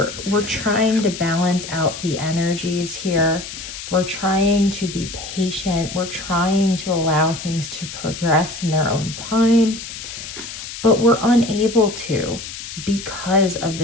trying to balance out the energies here. We're trying to be patient. We're trying to allow things to progress in their own time, but we're unable to because of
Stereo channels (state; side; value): noise; left; hiss, 10 dB below the sound